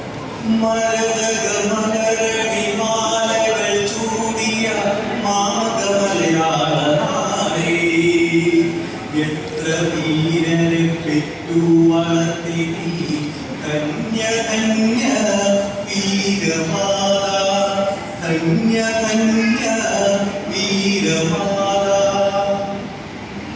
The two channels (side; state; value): both; identical; correlation 1.00